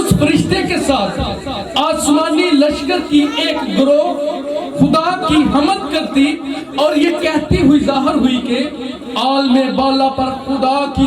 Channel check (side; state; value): both; identical; correlation 1.00